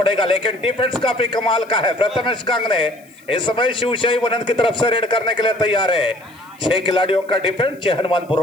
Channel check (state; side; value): noise; left; hiss, 29 dB below the sound